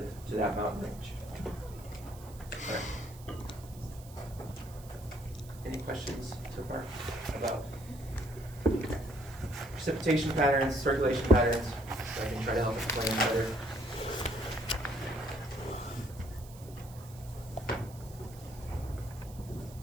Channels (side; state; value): right; noise; hiss, 21 dB below the sound